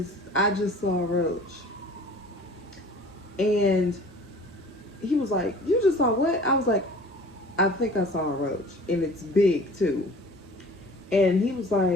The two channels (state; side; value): normal; both; correlation 0.46